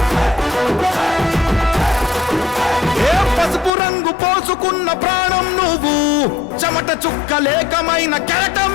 పసుపు రంగు పోసుకున్న ప్రాణం నువ్వు, చెమట చుక్కలేకమైన కెరటం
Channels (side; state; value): right; drops out; at 3.7 s